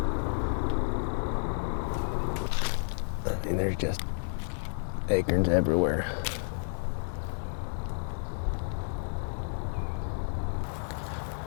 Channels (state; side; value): silent; right; digital silence